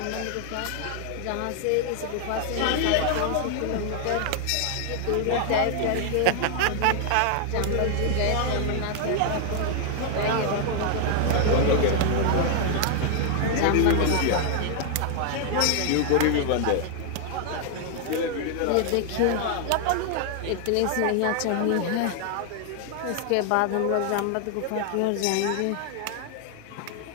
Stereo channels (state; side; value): different; both; correlation 0.00